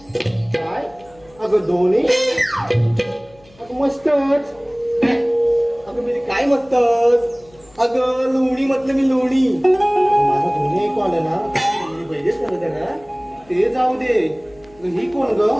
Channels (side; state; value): left; noise; hum, 28 dB below the sound